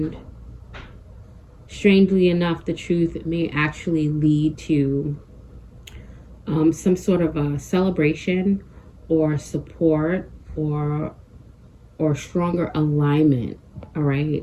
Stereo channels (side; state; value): both; identical; correlation 1.00